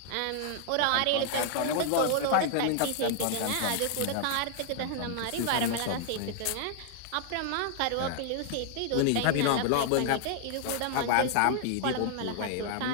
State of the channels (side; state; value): both; different; correlation 0.00